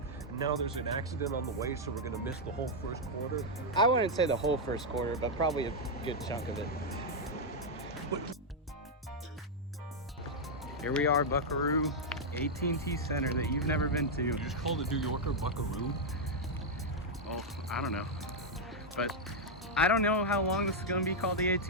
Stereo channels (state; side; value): normal; both; correlation -0.03